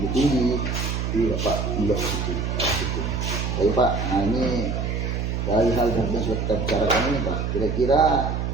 tinggi. Jadi Bapak melihat ke situ. Jadi Pak, nah ini dari hal yang sudah kita bicarakan ini Pak, kira-kira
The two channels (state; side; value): noise; right; hum, 1 dB below the sound